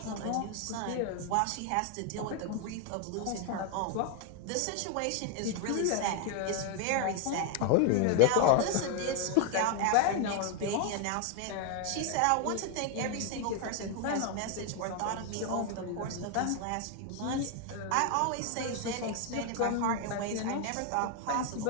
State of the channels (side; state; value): both; different; correlation 0.01